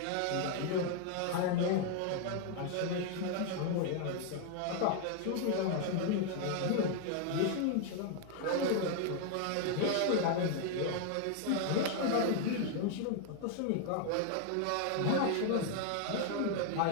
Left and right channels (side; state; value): both; different; correlation 0.00